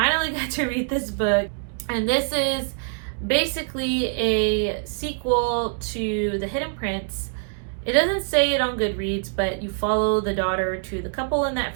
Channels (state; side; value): silent; left; digital silence